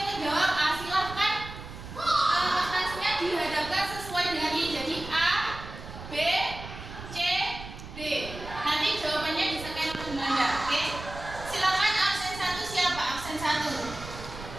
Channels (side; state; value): right; noise; rumble, 12 dB below the sound